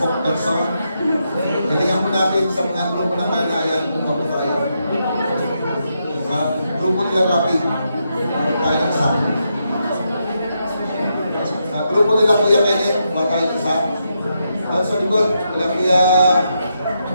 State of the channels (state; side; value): inverted; both; correlation -0.82